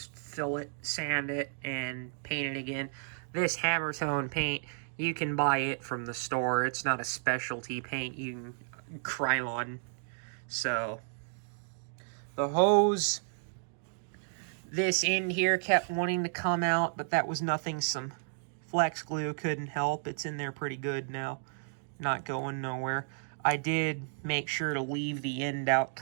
fill it, sand it, and paint it again. This hammer tone paint, you can buy it from the store. It's not a specialty paint. You can Krylon. So, the hose, this end here kept wanting to come out, but that was nothing some flex glue couldn't help. It's in there pretty good now. Not going nowhere. I did make sure to leave the end out,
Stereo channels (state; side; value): silent; left; digital silence